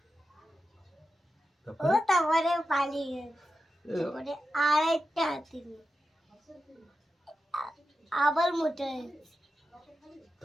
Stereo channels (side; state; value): both; normal; correlation 0.90